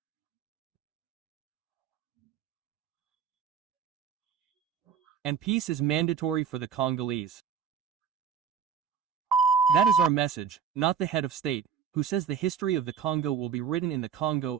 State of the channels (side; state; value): left; quieter; 7.3 dB